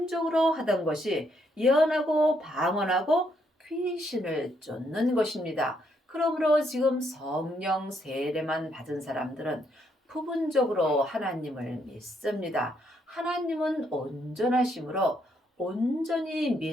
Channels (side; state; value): both; normal; correlation 0.74